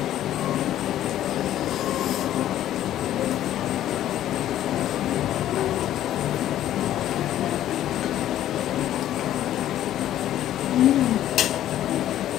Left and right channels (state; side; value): quieter; right; 12.3 dB